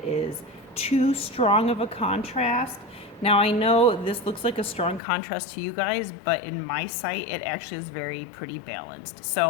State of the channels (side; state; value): right; drops out; at 5.0 s